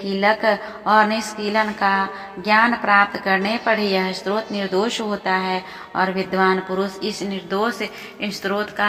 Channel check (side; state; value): both; identical; correlation 1.00